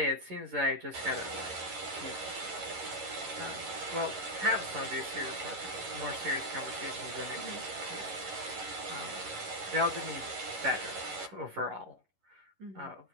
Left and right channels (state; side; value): late; left; 11 ms